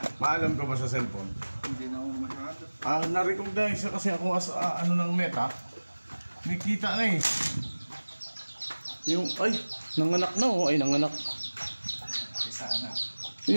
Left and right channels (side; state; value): both; inverted; correlation -1.00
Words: Maalam ka ba sa cellphone? Hindi na ako masyado. Na-recognize kasi ako as ano ng Meta. May kita na eh. Yung, ay, nanganak na oh. Ay, nanganak. Sana.